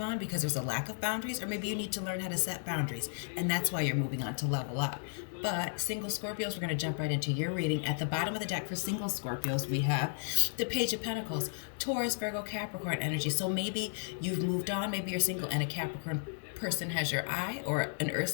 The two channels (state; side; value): silent; right; digital silence